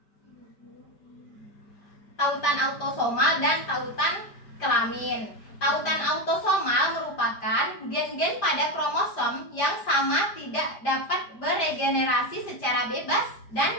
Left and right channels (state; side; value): late; right; 5.0 ms